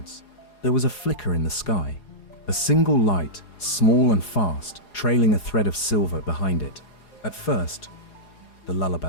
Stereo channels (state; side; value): late; right; 4.8 ms